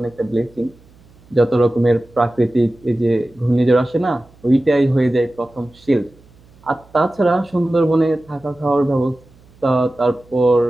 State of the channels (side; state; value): right; noise; hum, 28 dB below the sound